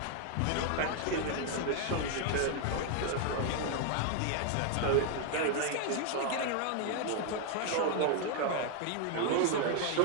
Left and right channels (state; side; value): different; both; correlation 0.00